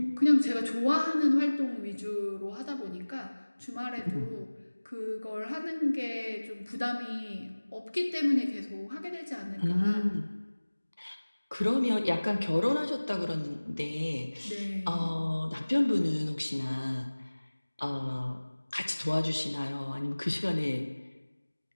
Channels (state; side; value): inverted; both; correlation -1.00